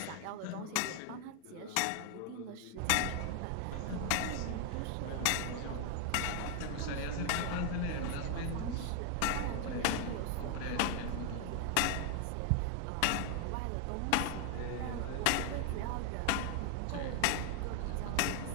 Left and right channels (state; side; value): different; both; correlation 0.00